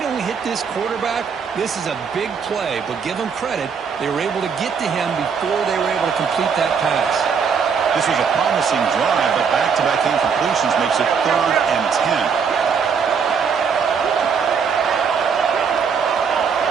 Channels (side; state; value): left; quieter; 6.3 dB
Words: don't hit this quarterback, this is a big play. But give them credit. They were able to get to him before they were able to complete that pass. This was a promising drive, but back-to-back incompletions makes it 3rd and 10.